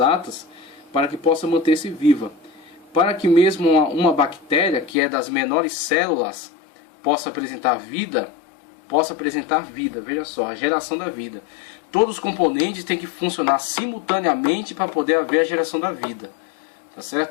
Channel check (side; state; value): right; drops out; at 5.0 s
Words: para que possa manter-se viva. Para que mesmo uma bactéria, que é das menores células, possa apresentar vida, veja só, a geração da vida. Todos os componentes têm que funcionar simultaneamente para poder haver a geração da vida, tá